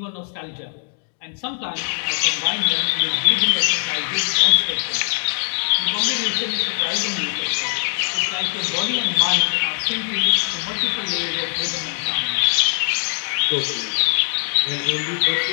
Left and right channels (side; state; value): right; silent; digital silence